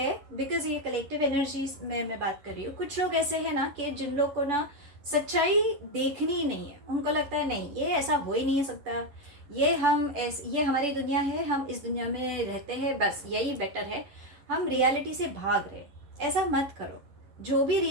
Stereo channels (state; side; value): late; left; 10 ms